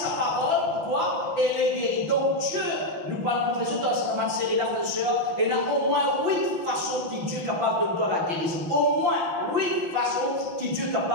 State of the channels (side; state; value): left; late; 5.9 ms